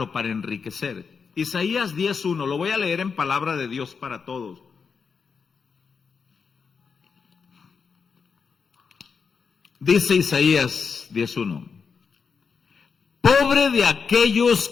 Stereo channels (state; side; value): quieter; right; 5.7 dB